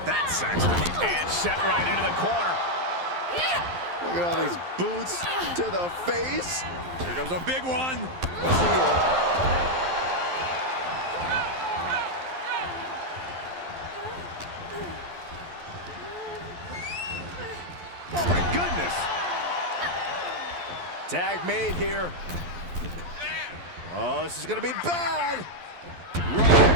that, Saxton. And set right into the corner. Look at all these boots to the face. Here comes a big one. Oh my goodness. Tag made here. Oh, this is gonna be bad.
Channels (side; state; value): left; late; 12 ms